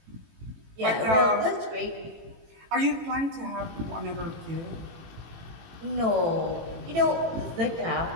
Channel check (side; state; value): left; late; 18 ms